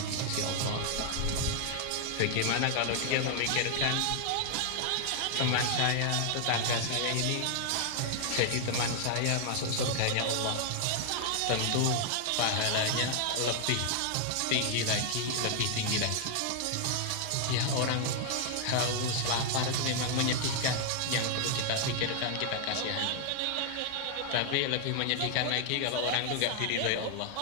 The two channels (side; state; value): both; different; correlation 0.00